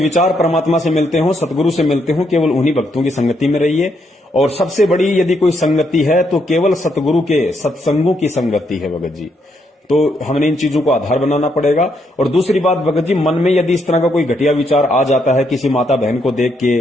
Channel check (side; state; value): both; normal; correlation 0.76